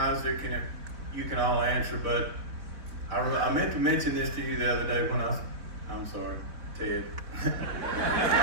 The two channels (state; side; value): late; left; 4.1 ms